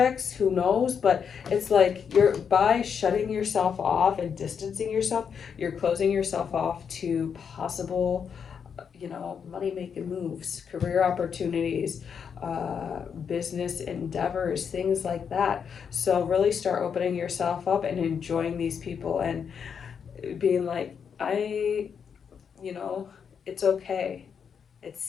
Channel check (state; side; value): quieter; right; 7.0 dB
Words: who knows? But it's like you're, by shutting yourself off and distancing yourself, you're closing yourself off to possible, you know, money making moves, career opportunities, business endeavors, things like that. So really start opening yourself up and enjoying these people and being like, you know, it's okay. It's